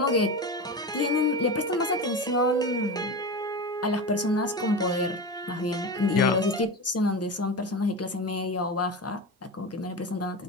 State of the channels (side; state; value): both; normal; correlation 0.24